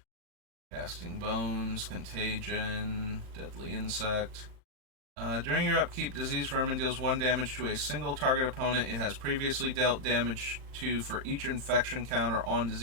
Casting Bones, Contagion, Deadly Insect. During your upkeep, Disease Vermin deals 1 damage to a single target opponent it has previously dealt damage to for each infection counter on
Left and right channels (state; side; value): late; left; 38 ms